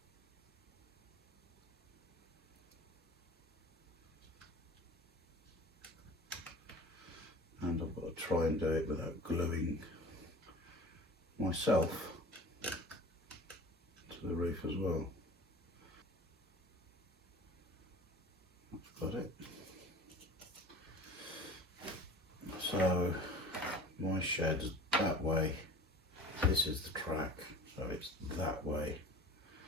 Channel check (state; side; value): normal; both; correlation 0.40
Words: And I've got to try and do it without gluing myself to the roof as well. I've got it. So my shed's that way, this is the track, so it's that way.